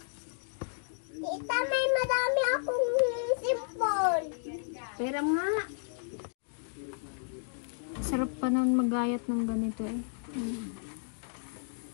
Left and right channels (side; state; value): right; silent; digital silence